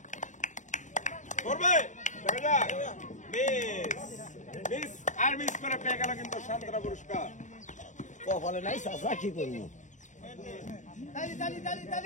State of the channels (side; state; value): right; late; 0.36 ms